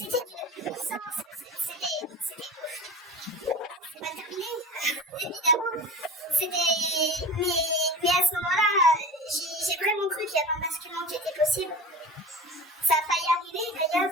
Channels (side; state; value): both; normal; correlation 0.35